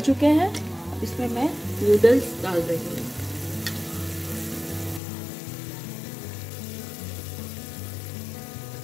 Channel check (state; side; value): drops out; right; at 5.0 s